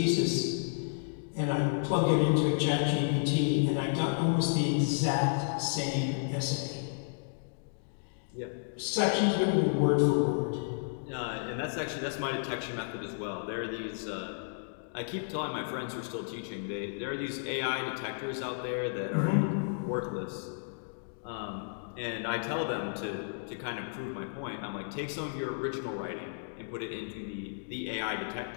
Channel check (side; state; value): right; silent; digital silence